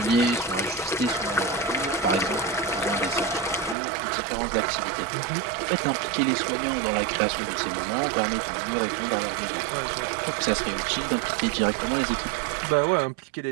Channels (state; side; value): drops out; left; at 3.8 s